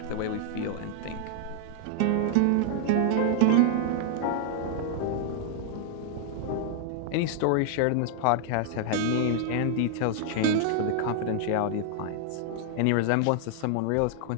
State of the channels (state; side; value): different; both; correlation 0.00